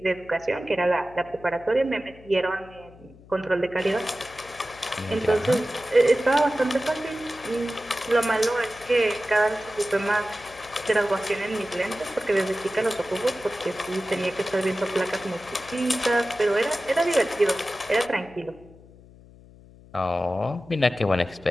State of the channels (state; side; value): noise; left; hum, 23 dB below the sound